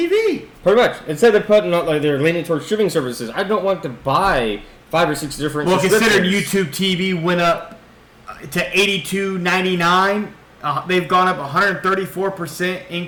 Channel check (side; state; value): both; identical; correlation 1.00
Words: Pretty much. Instead of putting out, like they're leaning towards streaming services. I don't want to buy 5 or 6 different. Well, considering YouTube TV went up to $82.99, they've gone up 134%